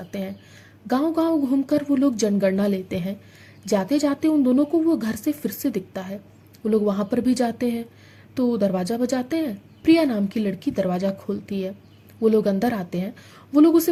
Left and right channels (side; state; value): both; identical; correlation 1.00